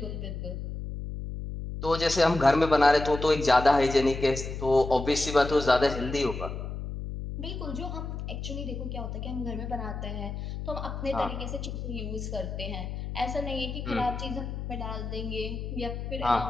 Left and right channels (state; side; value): noise; left; hum, 6 dB below the sound